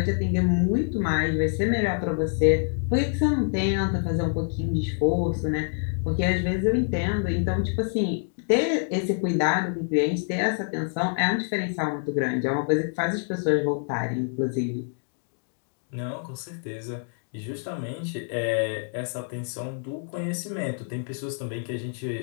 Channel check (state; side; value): silent; right; 61 dB below the other